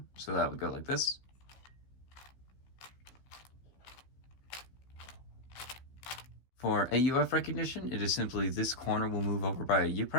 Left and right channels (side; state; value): right; late; 15 ms